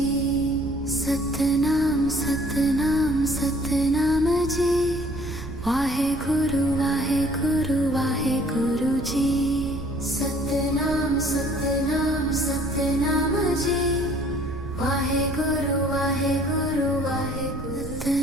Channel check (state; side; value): noise; right; rumble, 9 dB below the sound